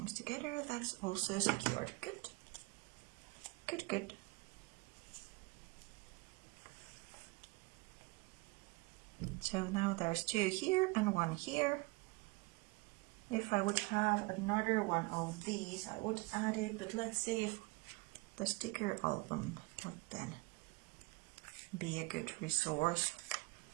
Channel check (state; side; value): quieter; left; 25.2 dB